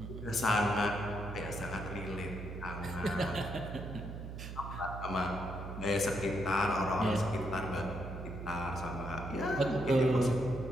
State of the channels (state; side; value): noise; right; hum, 8 dB below the sound